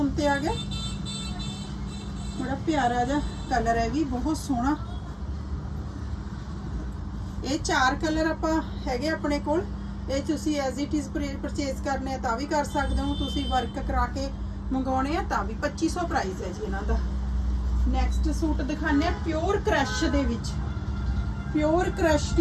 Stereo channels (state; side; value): identical; both; correlation 1.00